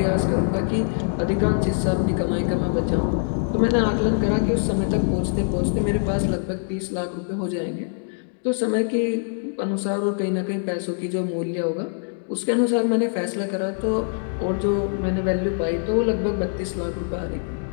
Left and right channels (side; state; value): right; silent; digital silence